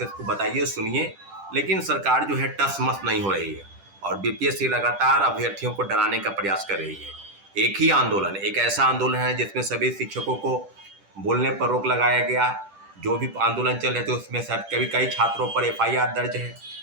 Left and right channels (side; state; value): left; late; 10 ms